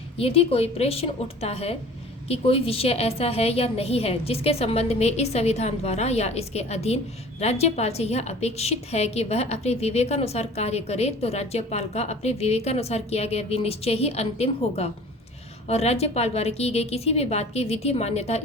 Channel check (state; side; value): normal; both; correlation 0.45